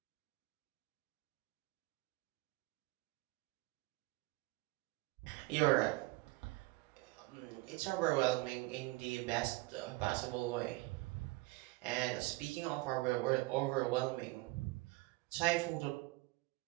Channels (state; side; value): quieter; left; 22.0 dB